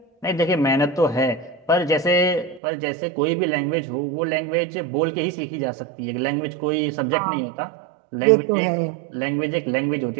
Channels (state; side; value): drops out; left; at 2.6 s